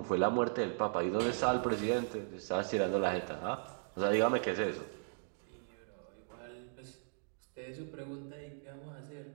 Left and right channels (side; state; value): left; silent; digital silence